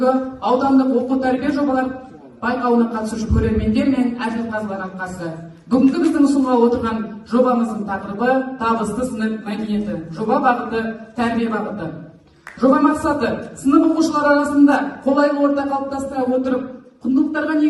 аудандық оқу тәрбие жобалар байқауына қатысушы көрермендер мен әділқазылар алқасы. Бүгінгі біздің ұсынғалы отырған жобамыздың тақырыбы табысты сынып мәдениеті. Жоба бағыты тәрбие бағыты. Жоба мақсаты сынып оқушылар арасында қолайлы орта қалыптастыра отырып, құндылықтарға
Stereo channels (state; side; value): identical; both; correlation 1.00